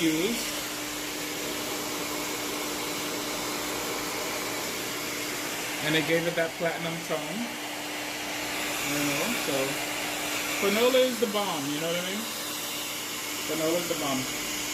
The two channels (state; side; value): identical; both; correlation 1.00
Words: And it gave it that platinum tone. You know, so Fanola is the bomb, you know what I mean? Fanola is the bomb.